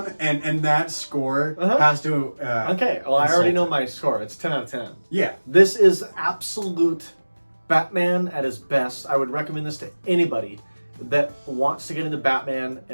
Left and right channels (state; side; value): inverted; both; correlation -1.00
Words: and that score has to... okay, well, I already know my score. It's 10 out of 10. Yeah. This is absolute Batman at his best. I would recommend this to anybody that wants to get into Batman